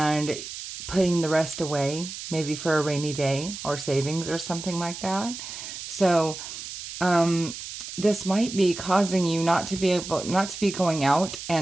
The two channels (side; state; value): right; noise; hiss, 10 dB below the sound